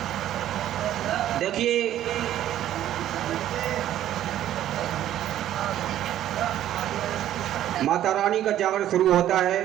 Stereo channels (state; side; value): quieter; left; 12.1 dB